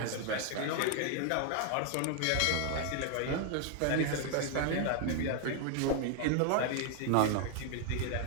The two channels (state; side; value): different; both; correlation 0.00